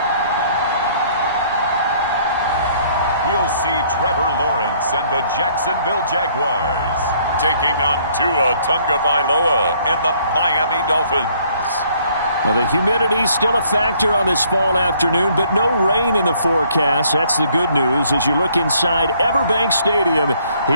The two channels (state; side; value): inverted; both; correlation -0.63